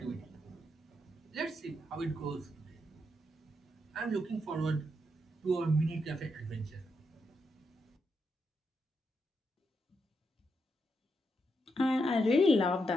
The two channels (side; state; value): both; normal; correlation 0.82